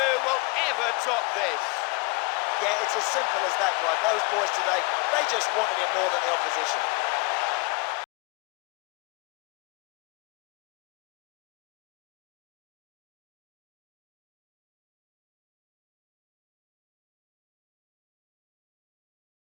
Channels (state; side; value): quieter; right; 28.2 dB